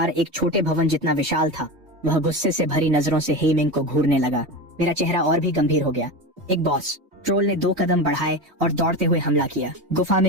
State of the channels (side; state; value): left; late; 3.2 ms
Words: एक छोटे भवन जितना विशाल था। वह गुस्से से भरी नजरों से हे मिंग को घूरने लगा। मेरा चेहरा और भी गंभीर हो गया। एक बॉस ट्रोल ने 2 कदम बढ़ाए और दौड़ते हुए हमला किया। गुफा